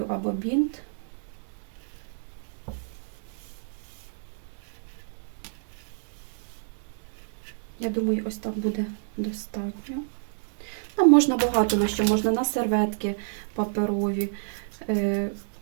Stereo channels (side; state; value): left; silent; digital silence